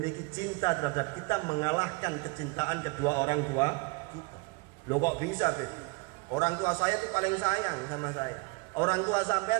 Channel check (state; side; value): quieter; left; 28.3 dB